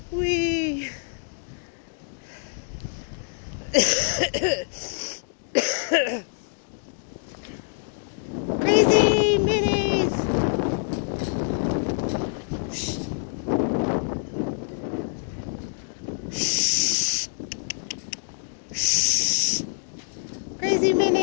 Wee. Crazy minis. Shh. Crazy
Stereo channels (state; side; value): silent; right; digital silence